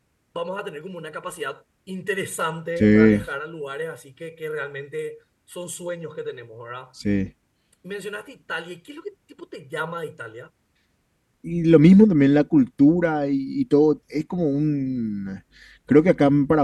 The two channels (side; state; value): both; identical; correlation 1.00